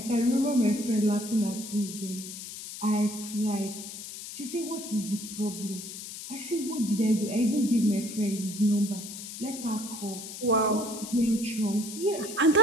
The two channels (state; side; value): noise; left; hiss, 10 dB below the sound